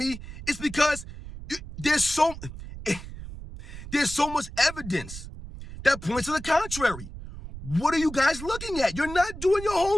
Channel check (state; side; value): noise; right; rumble, 12 dB below the sound